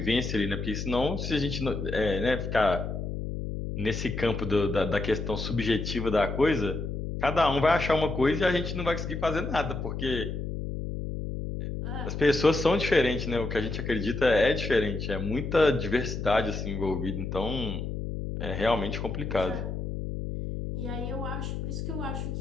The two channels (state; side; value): noise; left; hum, 5 dB below the sound